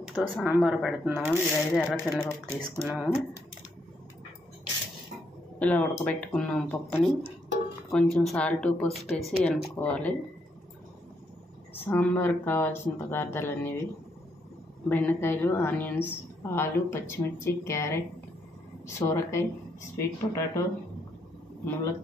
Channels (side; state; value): both; normal; correlation 0.76